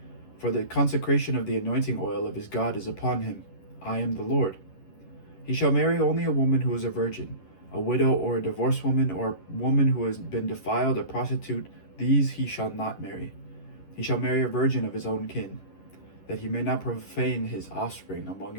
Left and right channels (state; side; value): late; right; 11 ms